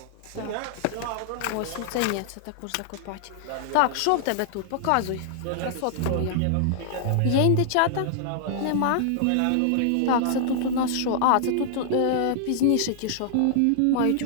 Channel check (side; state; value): both; different; correlation -0.01